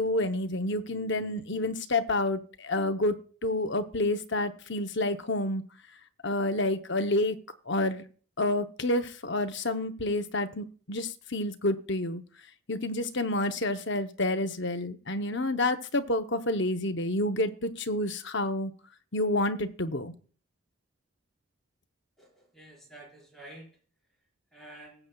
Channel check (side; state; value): both; normal; correlation -0.04